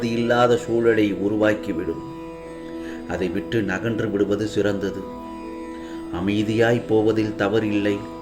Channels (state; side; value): identical; both; correlation 1.00